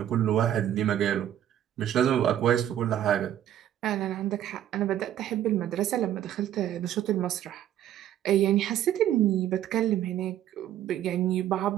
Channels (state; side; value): quieter; left; 11.4 dB